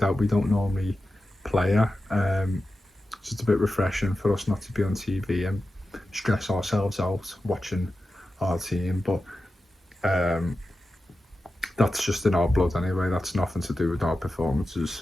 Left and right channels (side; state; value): both; normal; correlation 0.92